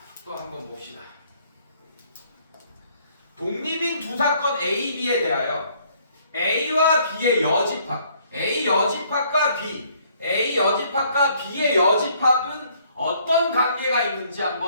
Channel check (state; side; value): inverted; both; correlation -0.64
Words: 또 한번 봅시다. 독립인 두 사건 A, B에 대하여 A와 B의 여집합, A 여집합과 B, A 여집합과 B의 여집합은 어떤 관계가 있는지